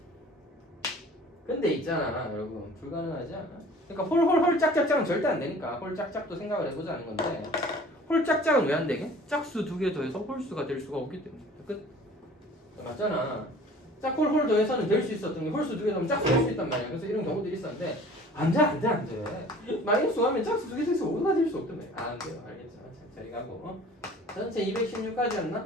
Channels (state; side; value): normal; both; correlation 0.47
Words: 근데 있잖아, 여러분. 불가능하지 않아? 그러니까 홀 짝짝짝은 절대 안 되니까 홀 짝짝도 생각을 해보자는 건데 홀 짝짝은 왜 안 되게? 짝수 2개 더해서 홀수가 될 수가 없기 때문에. 끝. 맞잖아. 짝홀 더해서는 될 수 있었던 게 홀수 2개 더하면 짝수 될 수 있단 말이야. 그래서 이런 경우들이 있었는데 안 돼. 마이너스 하면 짝수 2개 더해서 5가 될 수 없단 말이야. 안 돼요. 알겠죠? 자, 저리 가고. 전체